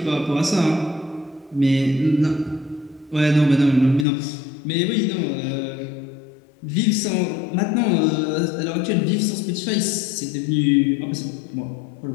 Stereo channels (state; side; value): drops out; right; at 4.0 s